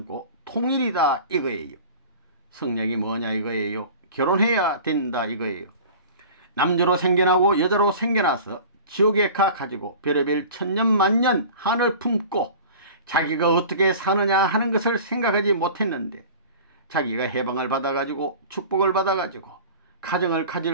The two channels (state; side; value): inverted; both; correlation -0.40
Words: 통일이다 이거예요. 성약이 뭐냐 이거예요. 결혼해야 된다 이거예요. 남자로 생겨나고 여자로 생겨나서 지옥에 가가지고 별의별 천년만년 한을 품고 자기가 어떻게 사느냐 하는 것을 생각하지 못했는데 자기가 해방을 받아가지고 축복을 받아가지고 가정을